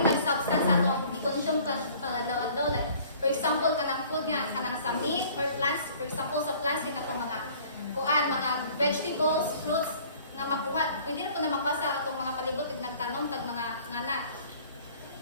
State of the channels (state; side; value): inverted; both; correlation -0.52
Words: substance sa itong i-consume ka pangadaw-adaw. Like, for example, kanang food nga, kanang sa meat or plants, for example, sa plants, itong mga vegetables, fruits, nga makuha. Pwede na po na makuha sa itong mga palibot, nagtanom, tag mga ngana.